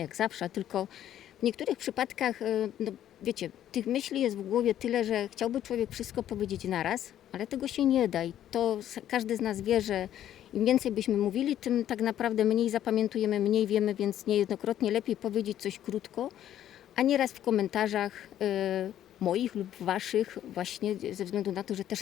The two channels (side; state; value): right; quieter; 11.4 dB